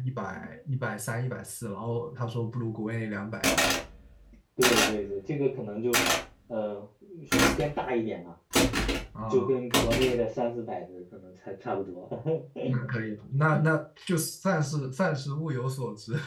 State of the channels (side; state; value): both; identical; correlation 1.00